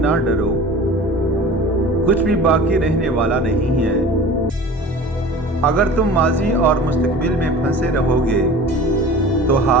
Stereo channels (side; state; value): both; normal; correlation 0.39